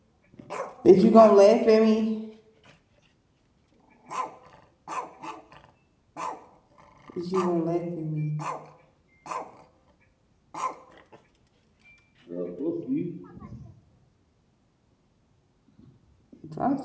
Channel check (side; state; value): both; identical; correlation 1.00